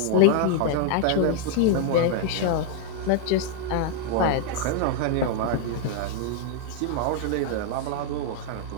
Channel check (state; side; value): different; both; correlation 0.00